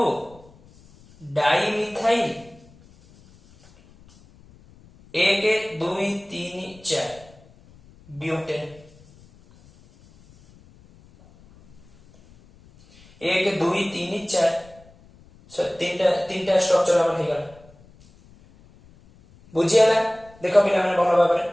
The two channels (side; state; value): left; noise; rumble, 26 dB below the sound